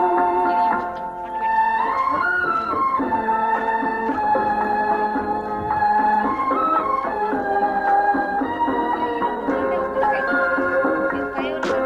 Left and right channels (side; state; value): both; identical; correlation 1.00